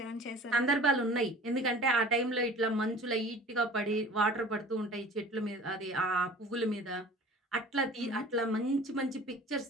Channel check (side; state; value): both; normal; correlation 0.44